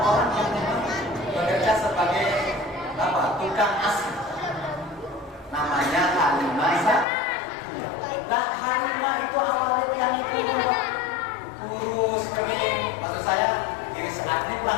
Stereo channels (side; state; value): right; drops out; at 7.1 s